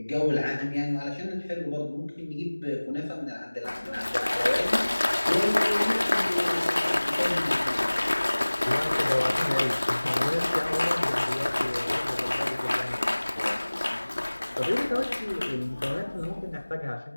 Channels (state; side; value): inverted; both; correlation -1.00